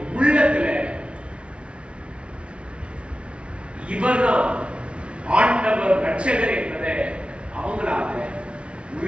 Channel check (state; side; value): late; left; 0.059 ms